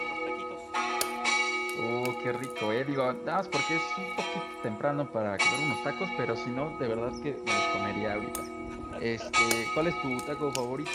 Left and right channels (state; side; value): identical; both; correlation 1.00